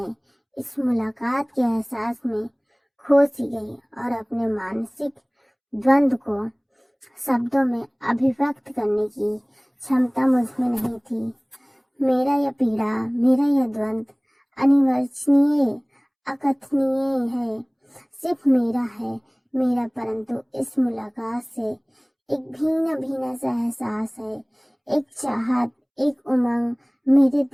इस मुलाकात के एहसास में खो सी गई और अपने मानसिक द्वंद्व को शब्दों में अभिव्यक्त करने की क्षमता मुझ में नहीं थी। मेरा यह पीड़ा, मेरा यह द्वंद्व अनिर्वचनीय, अकथनीय है, सिर्फ मेरा है, मेरा। परंतु इस मुलाकात से एक भीना भीना सा एहसास है, एक चाहत, एक उमंग मेरे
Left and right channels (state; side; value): identical; both; correlation 1.00